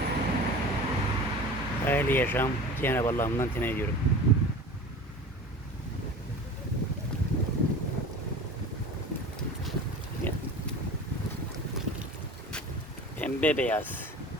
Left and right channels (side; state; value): both; normal; correlation 0.37